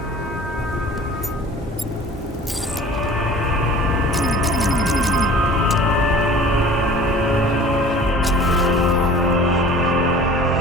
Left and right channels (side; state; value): both; normal; correlation 0.45